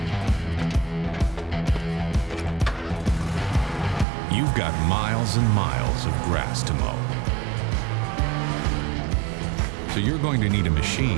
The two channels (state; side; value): drops out; left; at 4.0 s